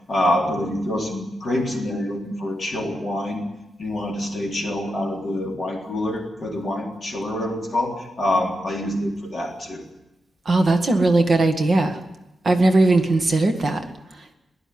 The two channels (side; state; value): both; normal; correlation 0.88